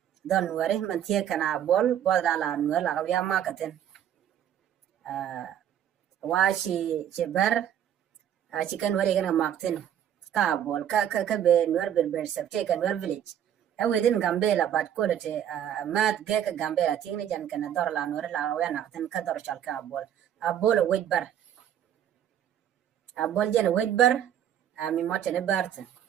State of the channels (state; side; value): quieter; left; 10.0 dB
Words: don nuer man tie kana bol bodra la nuer la ya makaten washi chebar chicken wari gana makten ka bol ka be nuer ber sab take nuer village within Gambella but quality mat gek Gambella tingni jan kana dor la nuer la ya nakten ka dor shalka bol a bol wait bar a bol jen wait bar mi motene barten